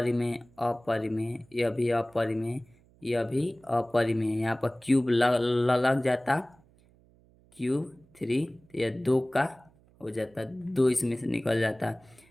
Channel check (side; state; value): right; noise; hum, 30 dB below the sound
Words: यह भी अपरिमेय, यह भी अपरिमेय। यहाँ पर क्यूब लग जाता, क्यूब 3, तो यह 2 का हो जाता, 2 इसमें से निकल जाता।